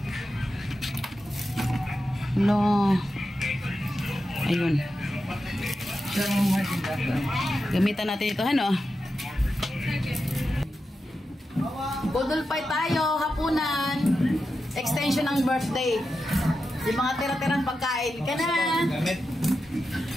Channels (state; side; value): normal; both; correlation 0.90